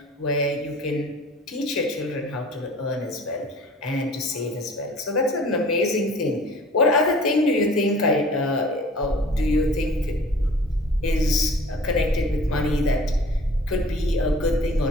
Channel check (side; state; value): both; normal; correlation 0.47